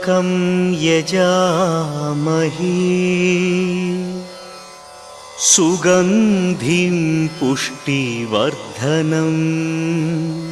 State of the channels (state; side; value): identical; both; correlation 1.00